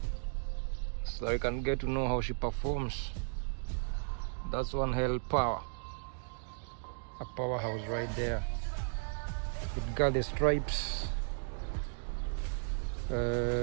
so you can get to know how she performs. That's one hell power. A powerhouse right there. It got the stripes.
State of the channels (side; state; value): left; silent; digital silence